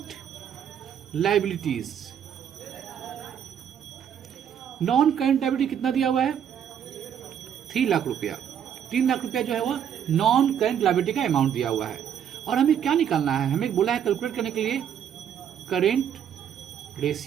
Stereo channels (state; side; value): quieter; left; 8.9 dB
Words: liabilities. Non-current liability कितना दिया हुआ है? 3 लाख रुपया. 3 लाख रुपया जो है वो नॉन करेंट लायबिलिटी का अमाउंट दिया हुआ है. और हमें क्या निकालना है? हमें बोला है कैलकुलेट करने के लिए करेंट